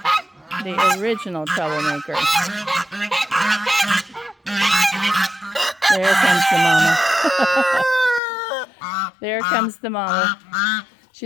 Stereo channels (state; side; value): drops out; right; at 8.2 s